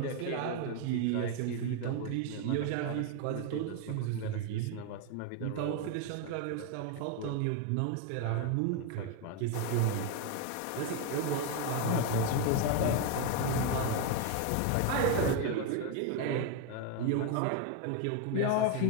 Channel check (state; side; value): different; both; correlation 0.01